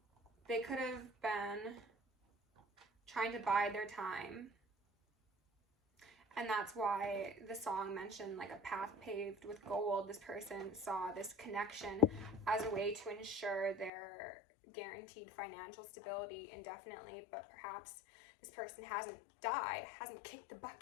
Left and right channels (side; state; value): right; drops out; at 13.9 s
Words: they could have been trying to bide their time, and that's why the song mentioned like a path paved with gold. This person saw this connection as a way to ensure their guaranteed financial stability indefinitely, but perhaps this person hasn't died, hasn't kicked the